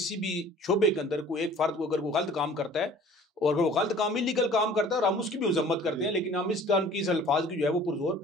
भी शोबे के अंदर कोई एक फर्द को अगर कोई गलत काम करता है और अगर वो गलत काम, इलीगल काम करता है, और हम उसकी भी मजम्मत करते हैं, लेकिन हम इस काम की, इस अल्फाज की जो है वो पुरजोर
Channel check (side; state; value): both; normal; correlation 0.49